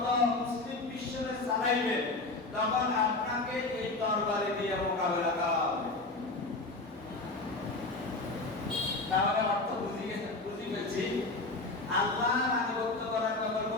মুসলিম বিশ্বকে চালাইবেন, তখন আপনাকে এই তরবারি দিয়ে মোকাবেলা করা হবে। তাহলে অর্থ বুঝি ফেলছি, আল্লাহর আনুগত্য করার ব্যাপারে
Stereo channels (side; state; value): right; quieter; 3.2 dB